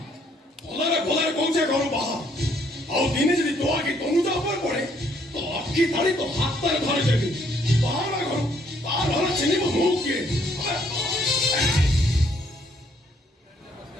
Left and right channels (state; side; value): normal; both; correlation 0.67